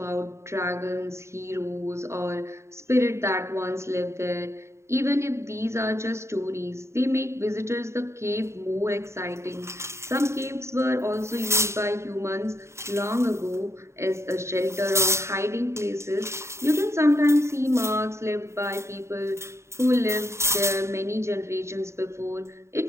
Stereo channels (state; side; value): late; left; 0.13 ms